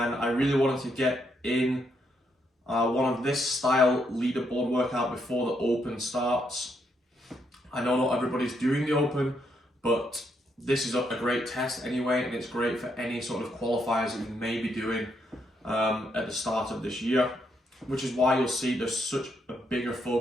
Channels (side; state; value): both; normal; correlation 0.77